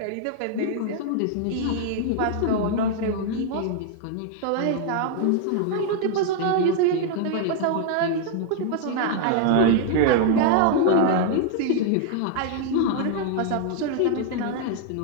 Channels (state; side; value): different; both; correlation 0.00